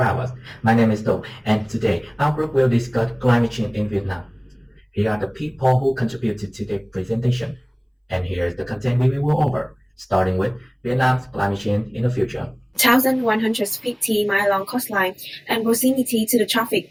us. My name is Do, and today our group will discuss climate change in Vietnam. Here are the people who contributed to today's presentation. And here's the content we will go over, starting with Vietnam's climate change in the future. 1,150-mile-long coastline and proximity to the tropic.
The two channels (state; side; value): identical; both; correlation 1.00